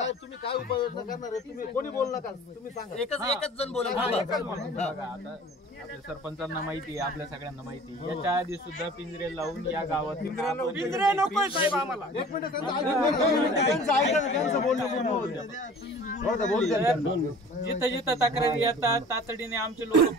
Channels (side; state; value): both; normal; correlation 0.45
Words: तुम्ही काय उपाययोजना करणार आहे? तुम्ही कोणी बोलू नका. तुम्ही सांगा. एकच जण बोला. आपल्या सरपंचांना माहिती आहे, आपल्या सगळ्यांना माहिती आहे. याच्या आधी सुद्धा पिंजरे लावून या गावात पिंजरे नकोय साहेब आम्हाला. एक मिनिट जिथं जिथं तक्रारी येतात तातडीने आमचे लोक